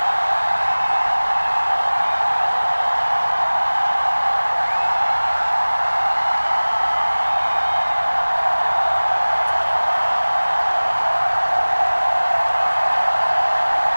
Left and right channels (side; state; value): both; inverted; correlation -1.00